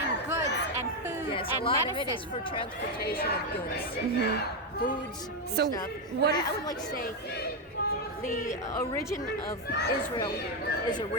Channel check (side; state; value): both; normal; correlation 0.06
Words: goods and food and a lot medicine. of it is for transportation of goods, foods, and so stuff. what I would like to say the origin of Israel is